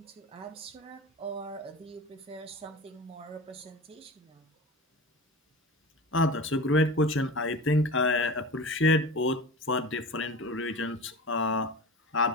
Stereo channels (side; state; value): both; normal; correlation 0.32